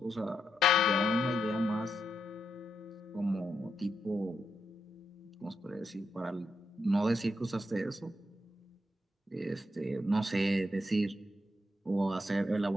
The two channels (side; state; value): both; normal; correlation 0.82